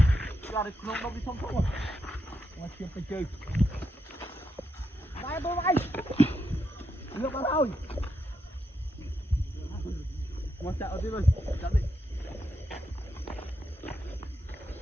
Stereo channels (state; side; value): normal; both; correlation 0.82